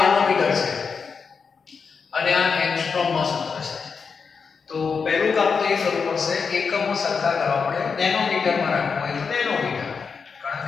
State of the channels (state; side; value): quieter; right; 5.6 dB